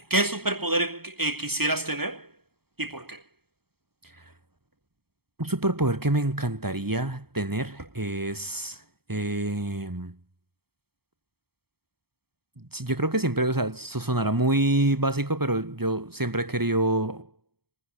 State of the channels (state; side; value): late; left; 0.96 ms